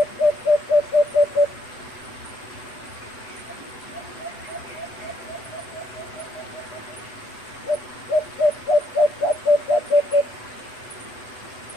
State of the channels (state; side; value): late; right; 8.0 ms